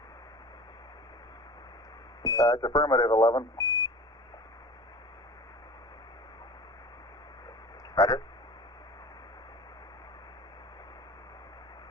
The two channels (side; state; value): both; normal; correlation 0.39